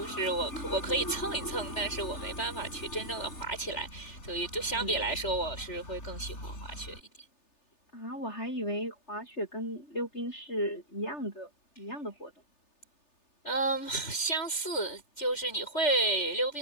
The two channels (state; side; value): late; right; 3.3 ms